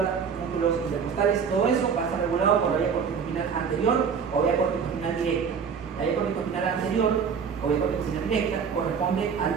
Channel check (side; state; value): left; quieter; 6.4 dB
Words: músculos intercostales, todo eso va a estar regulado por la vía corticoespinal anterior o vía corticoespinal directa. La vía corticoespinal anterior o vía corticoespinal directa corresponde al